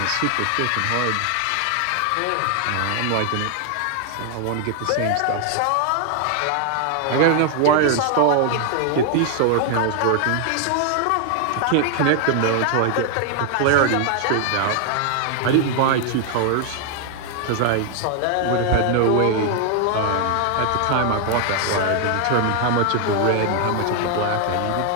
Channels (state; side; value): different; both; correlation 0.00